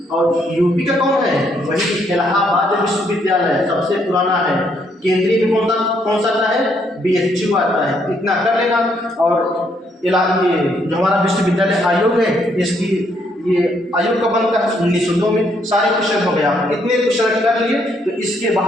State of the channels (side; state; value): both; normal; correlation 0.72